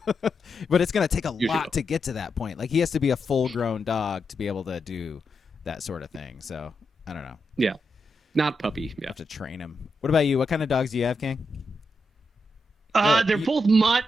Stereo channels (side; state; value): both; normal; correlation 0.85